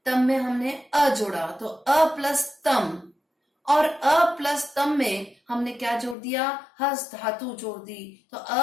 तम में हमने अ जोड़ा तो अ प्लस तम, और अ प्लस तम में हमने क्या जोड़ दिया, हस धातु जोड़ दी, तो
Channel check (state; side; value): drops out; right; at 6.2 s